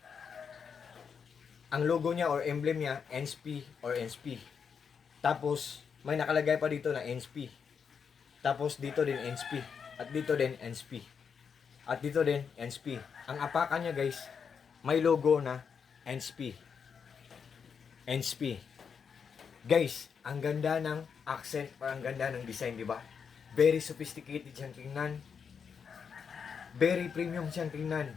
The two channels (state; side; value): quieter; right; 6.5 dB